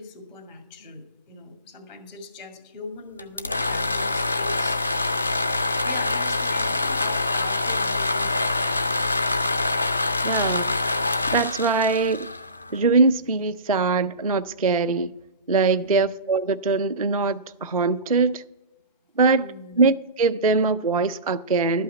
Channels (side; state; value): both; inverted; correlation -0.40